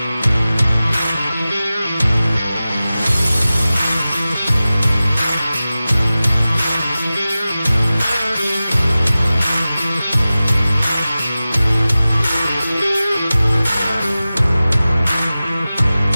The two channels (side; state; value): both; inverted; correlation -0.96